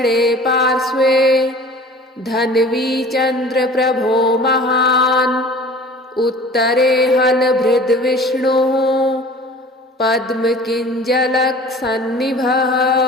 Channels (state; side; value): normal; both; correlation 0.44